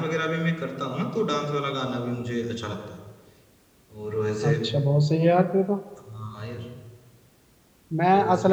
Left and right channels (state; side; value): identical; both; correlation 1.00